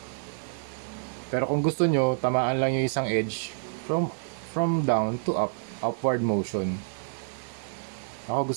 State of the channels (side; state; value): left; silent; digital silence